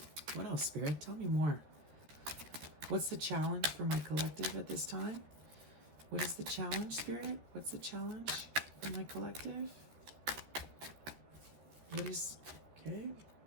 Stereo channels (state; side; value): late; left; 13 ms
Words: What else, Spirit? Tell me more. What's the challenge for my collective at this time? What is the challenge, Spirit? What's the challenge for my collective? What is, okay,